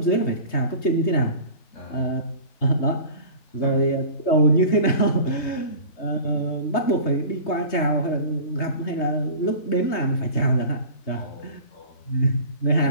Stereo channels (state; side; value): late; right; 3.2 ms